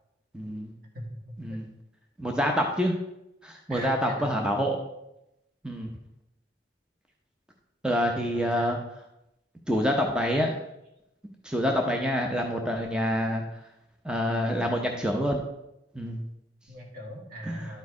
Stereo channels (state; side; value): normal; both; correlation 0.67